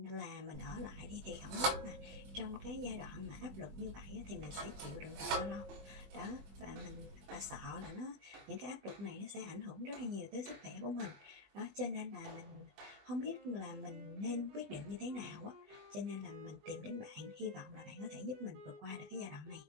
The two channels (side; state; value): left; late; 21 ms